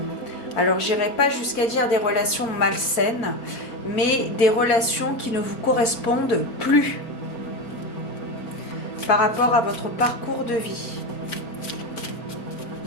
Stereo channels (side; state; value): right; late; 4.5 ms